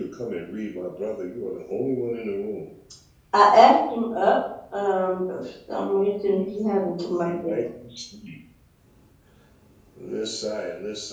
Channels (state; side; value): identical; both; correlation 1.00